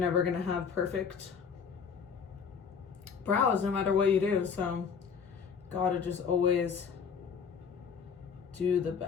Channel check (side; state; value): right; quieter; 6.4 dB